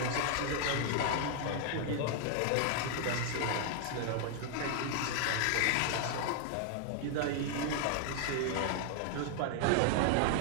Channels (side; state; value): both; different; correlation 0.00